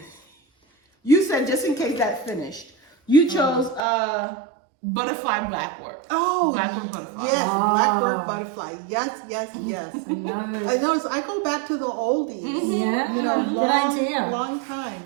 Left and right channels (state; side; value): drops out; left; at 3.8 s